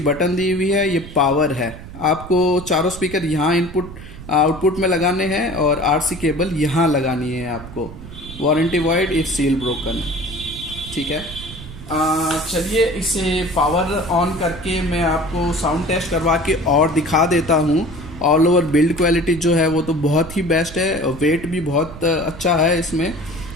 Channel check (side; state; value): right; noise; rumble, 14 dB below the sound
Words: बटन दी हुई है, ये पावर है। आपको चारों स्पीकर यहाँ इनपुट आउटपुट में लगाने हैं और RC केबल यहाँ लगानी है आपको। Warranty void if seal broken, ठीक है। चलिए इसे पावर ऑन करके मैं आपको साउंड टेस्ट करवा के और दिखा देता हूँ, ऑल ओवर बिल्ड क्वालिटी जो है वो तो बहुत ही बेस्ट है, वेट भी बहुत अच्छा है इसमें।